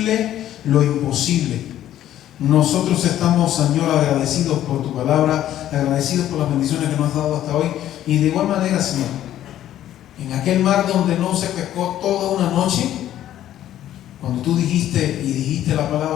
lo imposible. Nosotros estamos, Señor, agradecidos por tu palabra, agradecidos por las bendiciones que nos has dado hasta hoy, y de igual manera, Señor, en aquel mar donde no se pescó toda una noche, cuando tú dijiste la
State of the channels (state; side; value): quieter; right; 12.2 dB